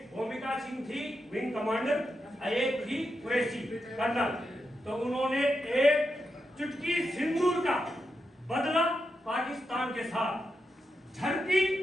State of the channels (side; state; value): both; normal; correlation 0.86